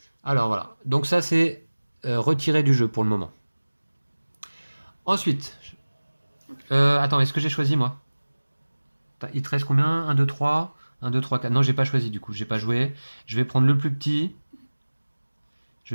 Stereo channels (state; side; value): inverted; both; correlation -1.00